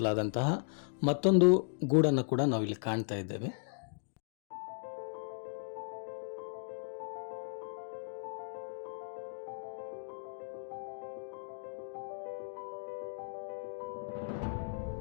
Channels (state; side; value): silent; right; digital silence